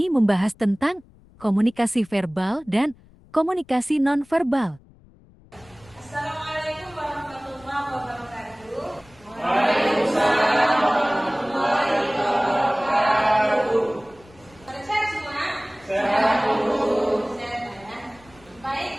membahas tentang komunikasi verbal dan komunikasi nonverbal. Assalamualaikum warahmatullahi wabarakatuh. Waalaikumsalam warahmatullahi wabarakatuh. Sehat semua? Sehat, Bu. Sehat ya.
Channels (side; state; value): left; noise; rumble, 26 dB below the sound